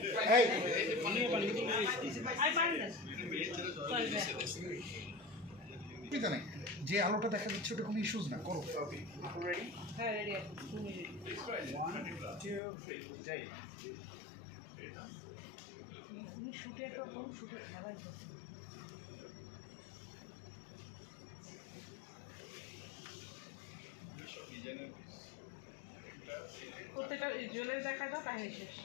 যে আলোটা দেখা যাচ্ছে ওটা কোনো ইস্যুস না, করো। হ্যাঁ রেডি আছে 2 মিনিট 1 2 3 উনি শুটে তো কোন শুটে খেলাই করছে প্রত্যেকটা জুয়েলারি দেখা দাও কাহিনী শেষ,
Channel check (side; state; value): right; drops out; at 12.6 s